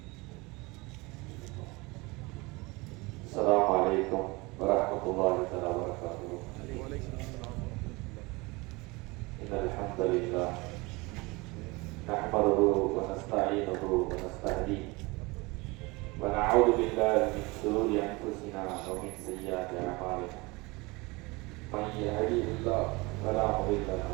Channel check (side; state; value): left; quieter; 24.6 dB